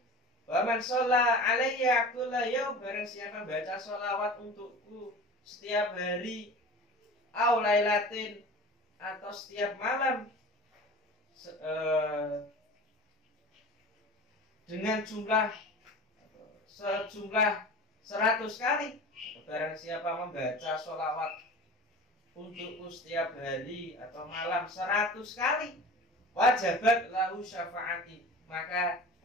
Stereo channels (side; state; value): both; normal; correlation 0.37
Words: Wa man shalla alayya kulla yaum, barang siapa baca sholawat untukku setiap hari, au lailatin, atau setiap malam, dengan sejumlah 100 kali. Barang siapa membaca sholawat untukku setiap hari atau malam 100 kali, wajabat lahu syafaati, maka